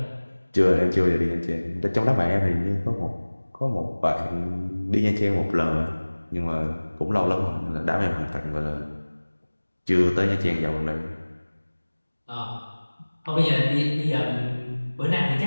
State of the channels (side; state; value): both; inverted; correlation -1.00